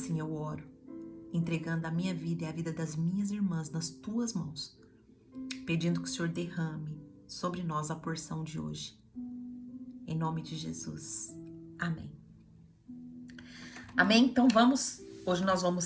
eu oro, entregando a minha vida e a vida das minhas irmãs nas tuas mãos, pedindo que o Senhor derrame sobre nós a porção de hoje. Em nome de Jesus. Amém. Amém? Então hoje nós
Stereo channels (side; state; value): both; identical; correlation 1.00